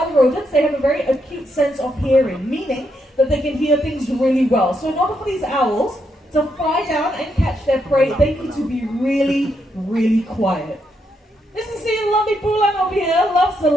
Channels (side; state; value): both; normal; correlation 0.79